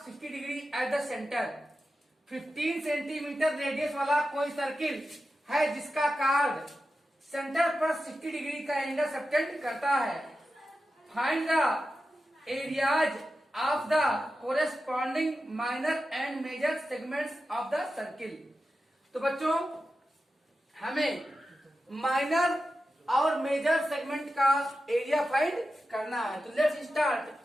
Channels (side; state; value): both; normal; correlation 0.91